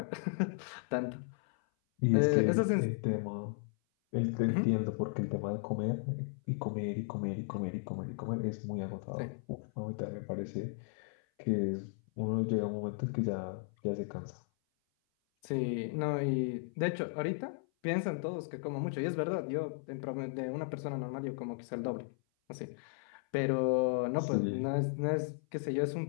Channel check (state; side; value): silent; right; 54 dB below the other